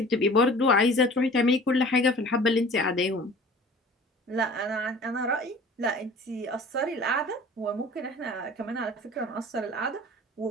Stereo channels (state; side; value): normal; both; correlation 0.45